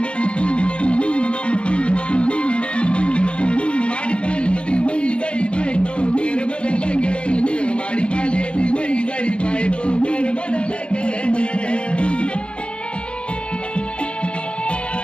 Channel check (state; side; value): late; right; 0.059 ms